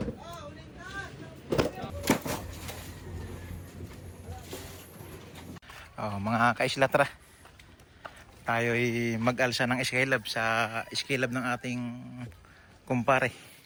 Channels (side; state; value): both; identical; correlation 1.00